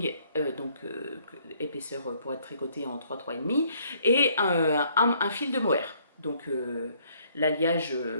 donc épaisseur pour être tricoté en 3,5, et un fil de mohair. Donc l'alliage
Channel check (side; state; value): both; inverted; correlation -0.65